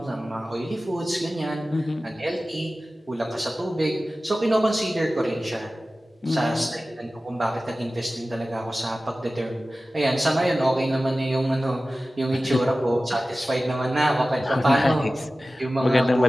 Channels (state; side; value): normal; both; correlation 0.96